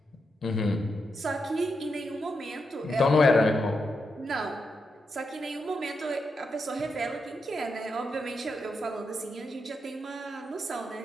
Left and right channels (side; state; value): both; normal; correlation 0.85